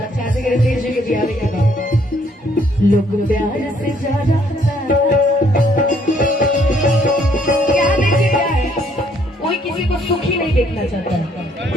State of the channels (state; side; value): normal; both; correlation 0.66